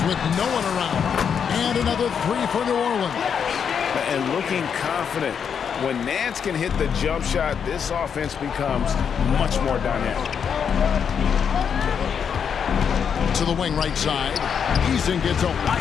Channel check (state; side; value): quieter; right; 7.2 dB